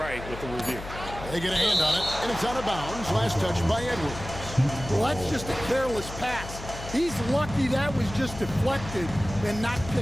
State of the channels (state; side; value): noise; left; hum, 11 dB below the sound